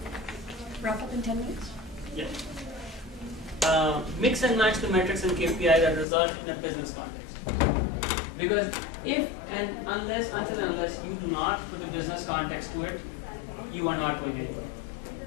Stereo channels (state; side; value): drops out; right; at 6.1 s